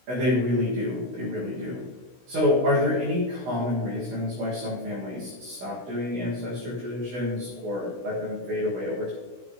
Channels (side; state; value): left; late; 16 ms